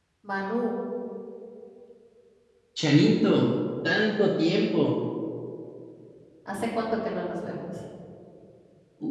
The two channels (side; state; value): both; identical; correlation 1.00